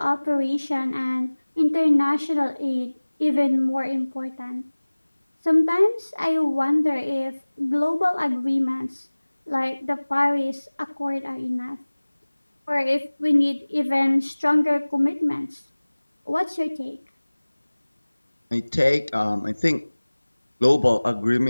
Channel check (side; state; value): both; inverted; correlation -1.00